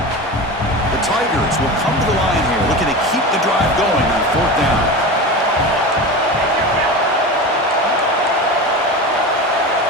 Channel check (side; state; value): both; normal; correlation 0.27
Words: The Tigers will come to the line here, looking to keep the drive going on fourth down.